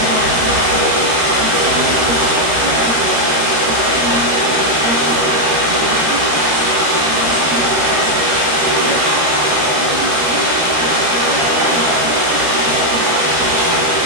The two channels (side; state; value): left; late; 13 ms